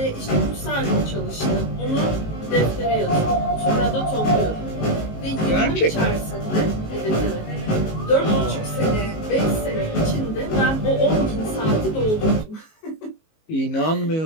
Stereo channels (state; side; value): late; right; 19 ms